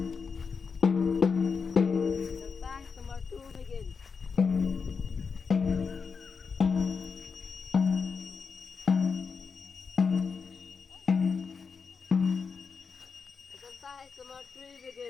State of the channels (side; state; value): right; quieter; 5.5 dB